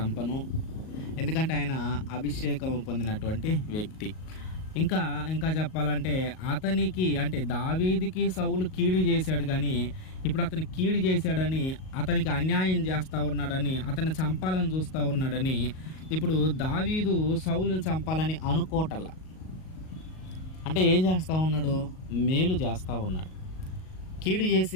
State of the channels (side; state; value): right; late; 38 ms